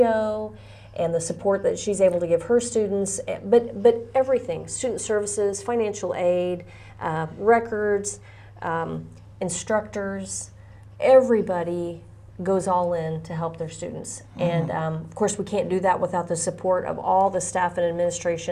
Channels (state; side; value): identical; both; correlation 1.00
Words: and the support that she's able to give her students, but everything, student services, financial aid, records, instructors, everybody goes all in to help their students. And of course we can't do that without the support of all the staff and